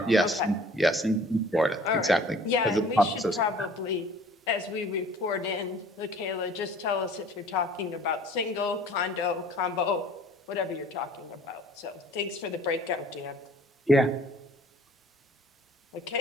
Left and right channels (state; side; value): normal; both; correlation 0.51